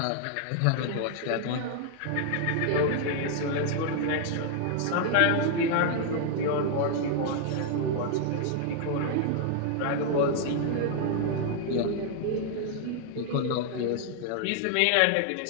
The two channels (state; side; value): different; both; correlation 0.00